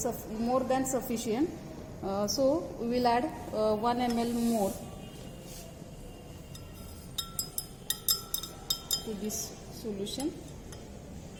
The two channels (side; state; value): both; identical; correlation 1.00